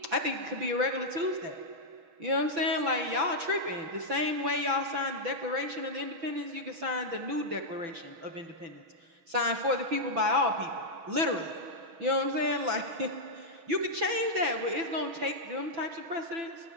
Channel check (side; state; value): left; late; 6.0 ms